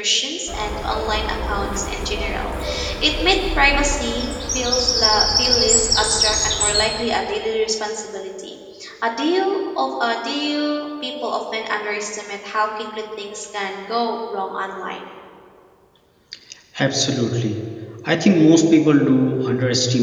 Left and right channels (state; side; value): identical; both; correlation 1.00